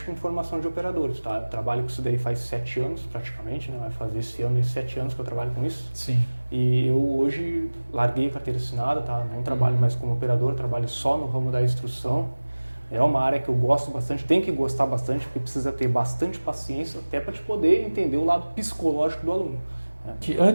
com formação de operadores, tá? Eu trabalho com isso daí faz 7 anos praticamente, né? Vai fazer esse ano 7 anos que eu trabalho com isso. Sim. E eu hoje larguei a carteira assinada, tá? Não trabalho mais como operador, trabalho só no ramo da instrução. É uma área que eu gosto bastante, tem que gostar bastante, porque precisa ter bastante paciência até para te poder entender o lado psicológico do aluno.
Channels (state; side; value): inverted; both; correlation -1.00